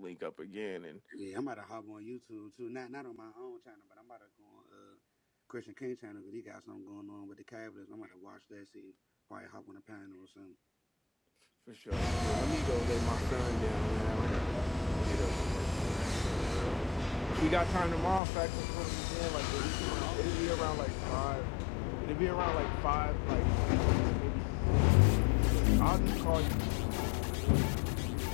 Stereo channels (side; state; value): right; drops out; at 18.2 s